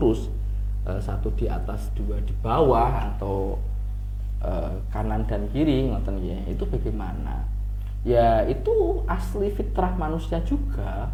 satu di atas, dua di bawah, atau kanan dan kiri, ngoten ya, itu bagaimana? Ya itu asli fitrah manusia juga,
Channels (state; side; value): identical; both; correlation 1.00